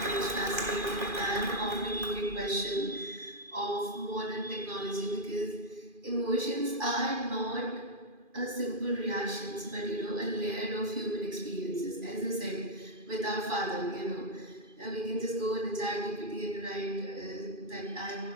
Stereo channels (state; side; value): late; left; 2.4 ms